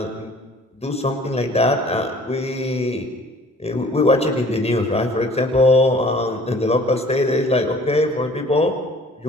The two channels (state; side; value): normal; both; correlation 0.51